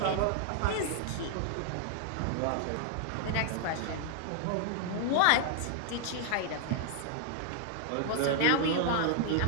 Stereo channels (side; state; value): both; different; correlation 0.00